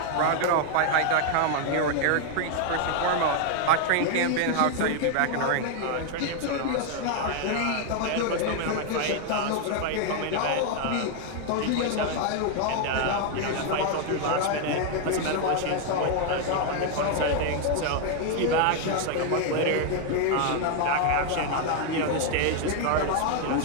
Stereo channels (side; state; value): both; different; correlation 0.00